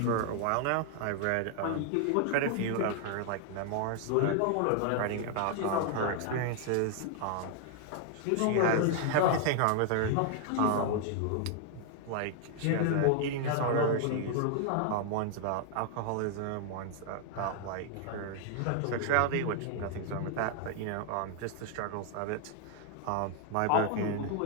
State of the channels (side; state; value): both; different; correlation 0.00